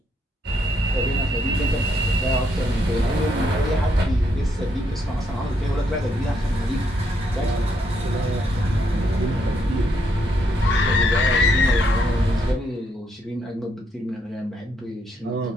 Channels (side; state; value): both; normal; correlation 0.75